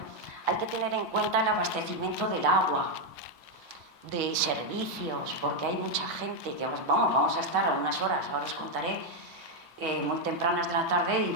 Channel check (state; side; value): normal; both; correlation 0.02